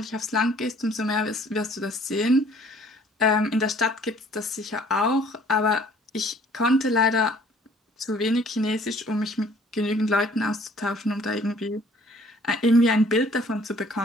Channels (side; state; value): both; normal; correlation 0.56